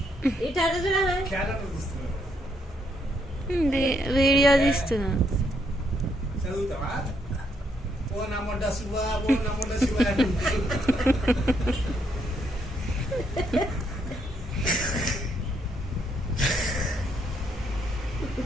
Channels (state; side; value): normal; both; correlation 0.74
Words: ఇట అట్ట చూడ. వీడియో తీస్తున్నా.